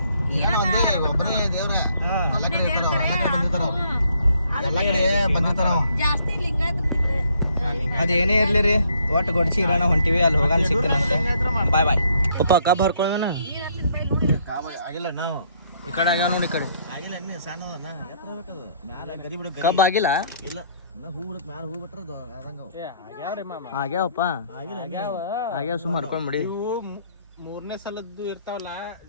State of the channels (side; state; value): both; inverted; correlation -0.67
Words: ಜಾಸ್ತಿ ಲಿಂಗಾಯತ ಅದೇನೇ ಇರ್ಲಿ ರೀ, ಒಟ್ಟು ಗೊಡ್ಚಿ ಇರಾನ ಹೊಂಟಿವಿ. ಅಲ್ಲಿ ಹೋಗಾನ ಸಿಗ್ತಾನ. ಬಾಯ್ ಬಾಯ್ ಪಪ್ಪ ಕಬ್ ಹರ್ಕೊಳ್ಳೋಣ. ಆಗಿಲ್ಲ ನಾವು ಈ ಕಡೆ ಆಗ್ಯಾವ ನೋಡಿ. ಈ ಕಡೆ ಆಗಿಲ್ಲ ಇನ್ನೇ ಸಣ್ಣ ಕಬ್ ಆಗಿಲ್ಲ. ಇಲ್ಲ ಹೂ ಬಿಡಕ್ ಮ್ಯಾಲ ಹೂ ಬಿಟ್ರ ಆಗ್ಯಾವಪ್ಪ. ಆಗ್ಯಾವ ಸುಮ್ಮ ಹರ್ಕೊಂಡ್ ಬಿಡಿ. ಮೂರನೇ ಸಲದ್ದು ಇರ್ತಾವಲ್ಲ,